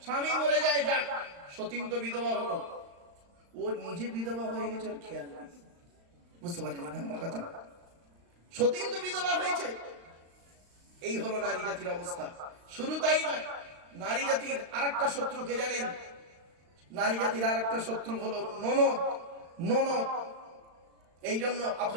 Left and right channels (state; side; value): late; left; 35 ms